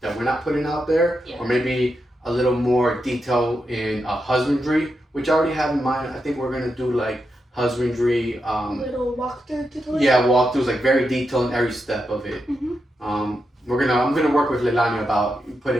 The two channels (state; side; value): normal; both; correlation 0.86